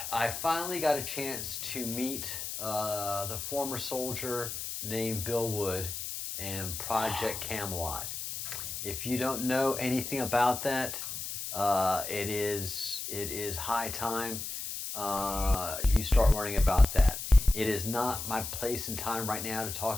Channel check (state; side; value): noise; left; hiss, 6 dB below the sound